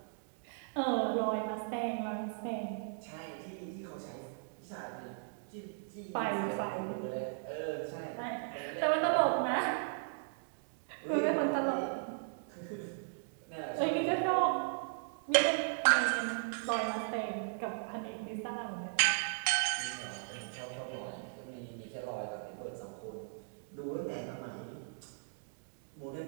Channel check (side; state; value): left; silent; digital silence